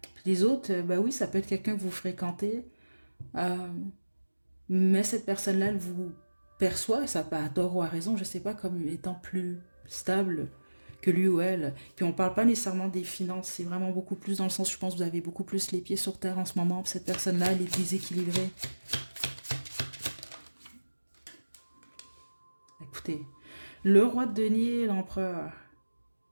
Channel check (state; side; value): inverted; both; correlation -1.00